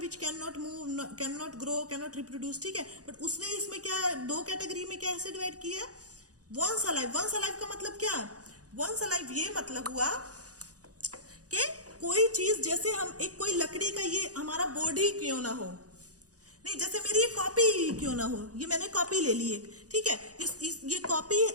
can not move, can not grow, can not reproduce, ठीक है। बट उसने इसमें क्या 2 कैटेगरी में कैसे डिवाइड किया? Once alive. वंस अलाइव का मतलब क्या? वंस अलाइव ये मतलब हुआ कि कोई चीज, जैसे हम एक कोई लकड़ी का ये हमारा बॉडी क्यों ना हो, नहीं, जैसे मेरी ये कॉपी क्यों ना हो, ये मैंने कॉपी ले ली एक, ठीक है। ये कॉपी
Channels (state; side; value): late; left; 0.67 ms